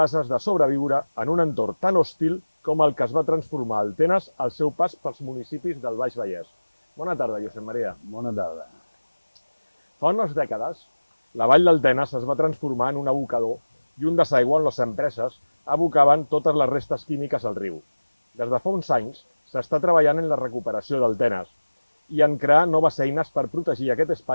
de sobreviure en un entorn tan hostil com el que es va transformar el Tenes al seu pas pels municipis del Baix Vallès. Bona tarda, Josep Maria. Bona tarda. Fa unes dècades, la vall del Tenes es va transformar en un abocador i un desaigüe on les empreses abocaven totes les restes químiques al riu. Des de fa uns anys s'està treballant en la recuperació del Tenes i en crear noves eines per protegir aquest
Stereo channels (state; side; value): inverted; both; correlation -1.00